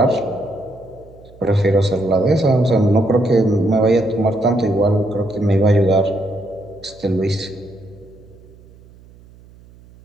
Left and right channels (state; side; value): noise; right; hum, 24 dB below the sound